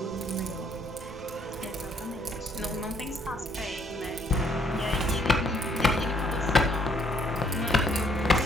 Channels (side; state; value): both; normal; correlation 0.67